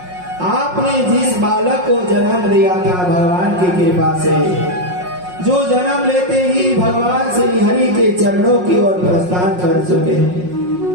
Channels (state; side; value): late; left; 5.5 ms